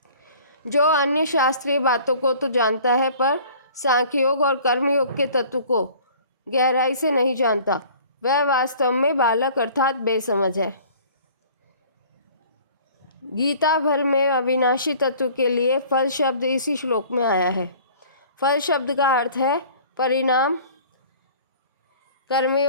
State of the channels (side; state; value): both; inverted; correlation -0.49